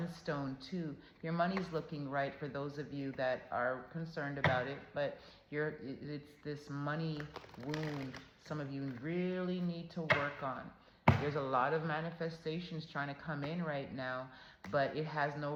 too. Your money's looking right for those of you that are concerned about it, but it's this money wound some of you really need to work on. There's a lot of manifestations trying to come in right now, but it has no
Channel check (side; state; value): both; identical; correlation 1.00